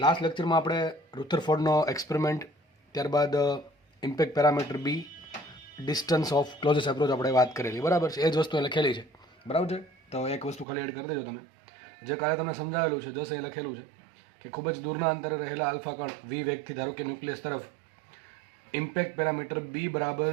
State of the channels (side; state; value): left; drops out; at 10.7 s